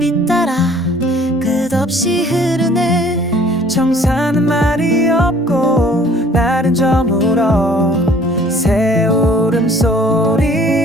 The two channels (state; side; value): normal; both; correlation 0.55